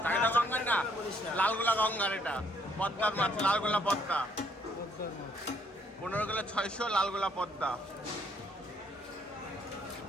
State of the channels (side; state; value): both; normal; correlation 0.68